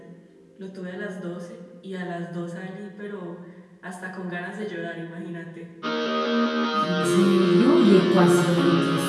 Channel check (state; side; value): identical; both; correlation 1.00